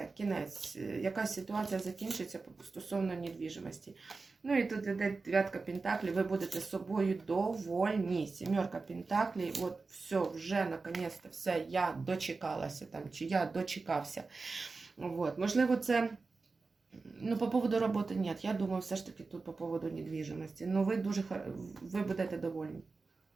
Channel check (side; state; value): left; quieter; 4.1 dB